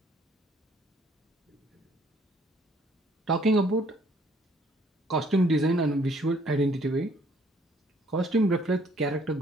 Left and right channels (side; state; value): both; normal; correlation 0.62